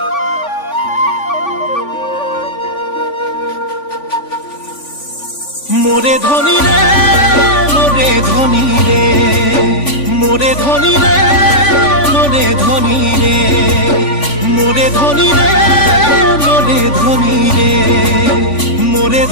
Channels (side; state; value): right; late; 3.5 ms